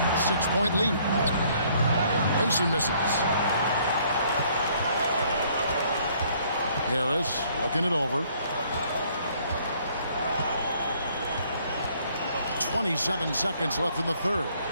6-point lead. Mason misses. Harris looking it over. 27 seconds left in the third.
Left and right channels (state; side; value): inverted; both; correlation -0.63